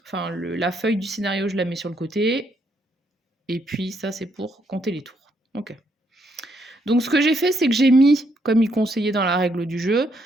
enfin la feuille du scénario, je la mets sur le côté. Et puis ça, c'est pour compter les tours. Ok. Donc ce que j'ai fait, c'est que j'ai mis, comme il conseillait dans la règle du jeu,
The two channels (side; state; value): both; normal; correlation 0.74